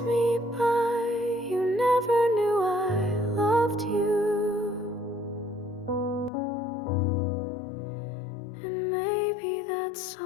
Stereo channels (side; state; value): right; drops out; at 6.3 s